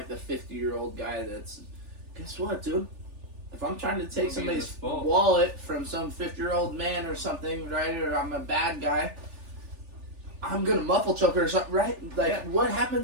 the 50-year-old guy that's, guess what, dude? If I'm trying to take somebody's wallet from some 50-year-old man or something, right, or I'm a bad guy, I'm gonna muffle choke her or something, right? Like, what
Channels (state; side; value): late; left; 3.4 ms